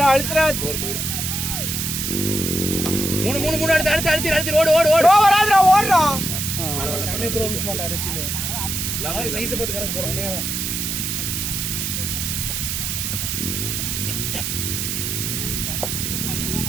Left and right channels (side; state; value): right; noise; hiss, 2 dB below the sound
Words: 4 போயிடும். 3 அடுத்து ஓடு வராதுடா ஓடுறா. சமய த்ரோ மிஸ் பண்ணா ரெத்தினே. சைஸ் பார்த்து கணக்கு போடுறே.